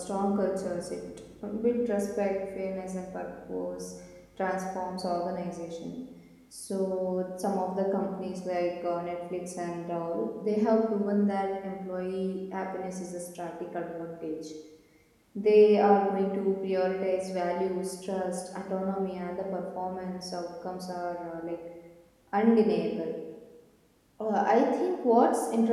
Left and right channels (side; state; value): both; identical; correlation 1.00